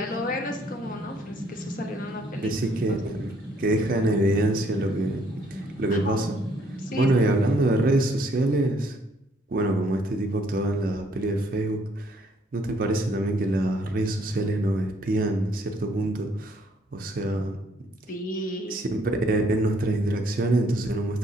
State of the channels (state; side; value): normal; both; correlation 0.66